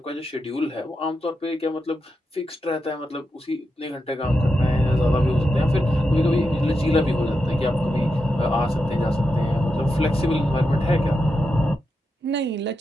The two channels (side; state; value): both; normal; correlation 0.87